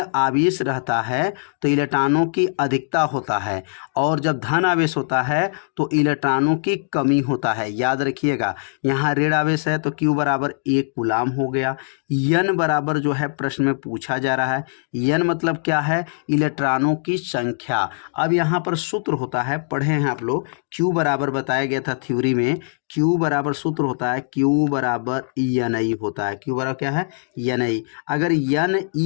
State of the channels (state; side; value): silent; right; digital silence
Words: आवेश रहता है तो इलेक्ट्रॉनों की अधिकता होता है, और जब धन आवेश होता है तो इलेक्ट्रॉनों की कमी होता है। याद रखिएगा यहाँ ऋण आवेश है तो Q बराबर 1 कूलाम हो गया। N बराबर जो है प्रश्न में पूछा जा रहा है, N मतलब क्या है इलेक्ट्रॉनों की संख्या। अब यहाँ पर सूत्र होता है पढ़े हैं आप लोग, Q बराबर बताया गया था थ्योरी में, Q बराबर सूत्र होता है Q बराबर NI होता है। Q बराबर क्या है NI। अगर